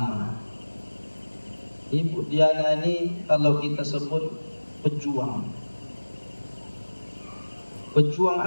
Ibu Diana ini kalau kita sebut pejuang. Pejuang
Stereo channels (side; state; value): both; inverted; correlation -1.00